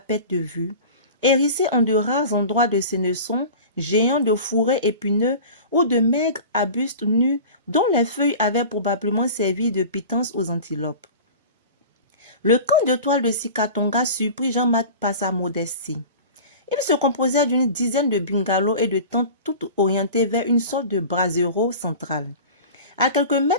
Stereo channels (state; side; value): inverted; both; correlation -0.36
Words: de vue, hérissée en de rares endroits de sénesons, géants de fourrés épineux ou de maigres arbustes nus dont les feuilles avaient probablement servi de pitance aux antilopes. Le camp de toile de Sikatonga surprit Jean-Marc par sa modestie. Il se composait d'une dizaine de bungalows et de tentes toutes orientées vers une sorte de brasero central. À quelques